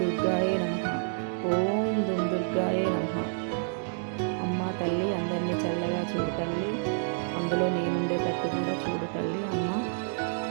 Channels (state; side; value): silent; left; digital silence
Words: దుర్గాయే నమః, ఓం దుమ్ దుర్గాయే నమః. అమ్మ తల్లి అందరినీ చల్లగా చూడు తల్లి, అందులో నేనుండేటట్టు కూడా చూడు తల్లి. అమ్మ